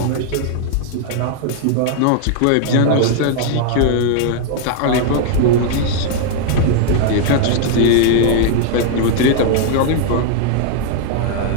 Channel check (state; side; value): different; both; correlation 0.00